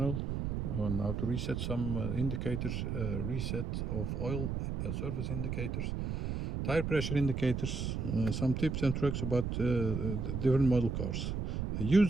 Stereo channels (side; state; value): right; noise; rumble, 2 dB below the sound